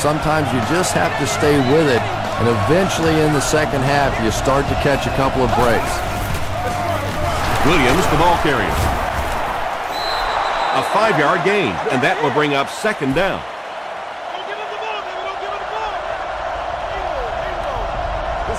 you just have to stay with it, and eventually in the second half, you start to catch a couple of breaks. Williams, the ball carrier. A 5-yard gain, and that will bring up 2nd down.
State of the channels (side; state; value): both; identical; correlation 1.00